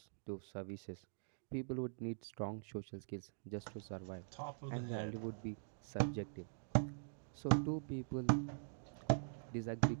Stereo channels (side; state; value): left; silent; digital silence